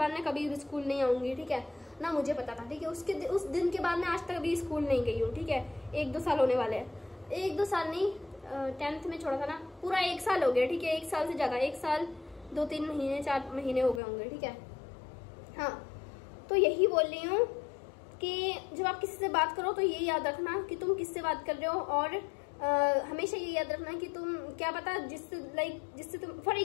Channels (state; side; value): drops out; right; at 14.0 s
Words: मैं कभी स्कूल नहीं आऊंगी, ठीक है ना, मुझे पता था, ठीक है। उस दिन के बाद मैं आज तक अभी स्कूल नहीं गई हूँ, ठीक है। 1-2 साल होने वाले हैं, 1-2 साल नहीं, 10th में छोड़ा था ना, पूरा 1 साल हो गया, ठीक है। 1 साल से ज्यादा, 1 साल 2-3 महीने 4 महीने हो गए होंगे, ठीक है। हाँ, तो यही बोल रही हूँ कि जब आप किसी से बात करो तो ये याद रखना कि तुम किससे बात कर रहे हो, और हमेशा ये याद रखना कि तुम क्या पता जिससे तुम, फॉर